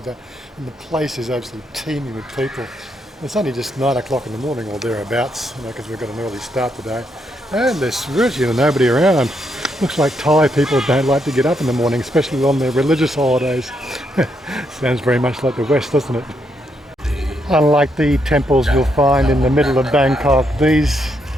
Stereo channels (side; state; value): both; normal; correlation 0.78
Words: that, and the place is absolutely teeming with people. It's only just 9 o'clock in the morning or thereabouts, because we've got an early start today, and there's virtually nobody around. Looks like Thai people don't like to get up in the morning, especially on their religious holidays. Sounds very much like the West, doesn't it? Unlike the temples you'll find in the middle of Bangkok, these